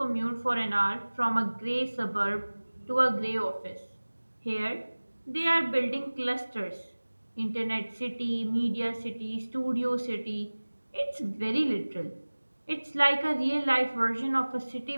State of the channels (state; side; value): inverted; both; correlation -1.00